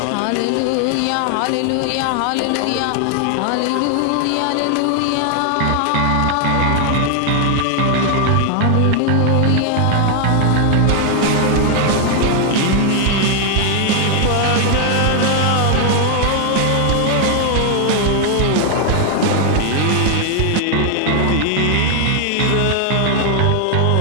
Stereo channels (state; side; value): different; both; correlation 0.00